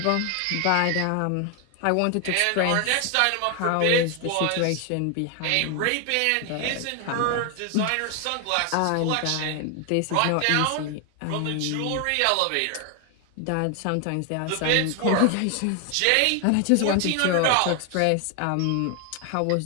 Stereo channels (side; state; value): both; different; correlation 0.01